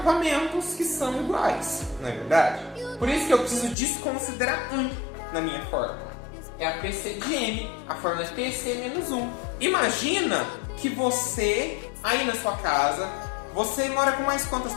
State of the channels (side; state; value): right; drops out; at 3.8 s